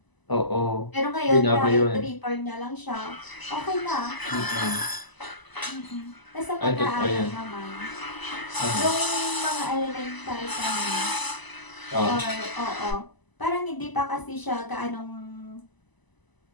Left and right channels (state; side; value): late; right; 1.0 ms